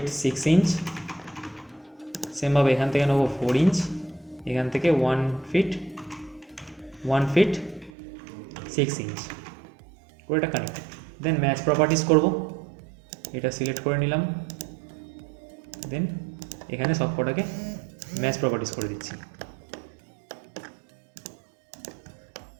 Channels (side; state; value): left; drops out; at 7.9 s